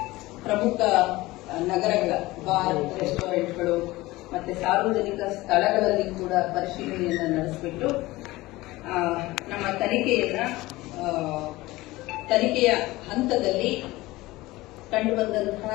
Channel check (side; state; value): right; quieter; 19.3 dB